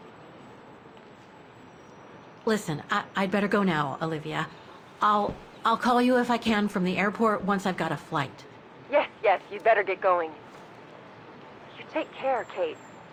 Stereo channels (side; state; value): both; identical; correlation 1.00